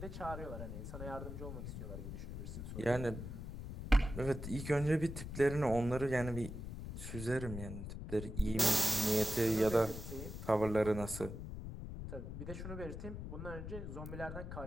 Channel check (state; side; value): noise; left; rumble, 7 dB below the sound